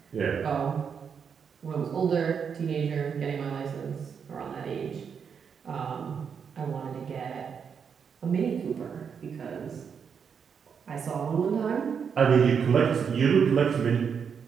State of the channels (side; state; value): left; quieter; 6.8 dB